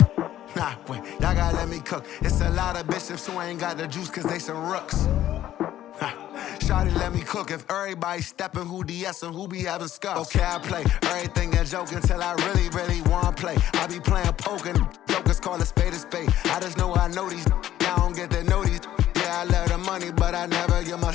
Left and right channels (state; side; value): quieter; right; 12.7 dB